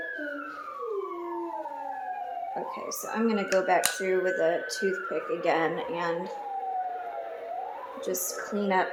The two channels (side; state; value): both; identical; correlation 1.00